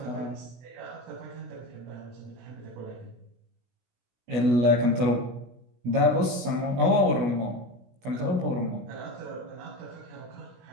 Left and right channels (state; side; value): late; left; 16 ms